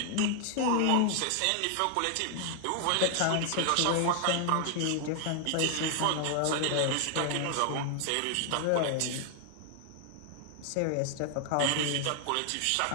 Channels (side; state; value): both; different; correlation 0.00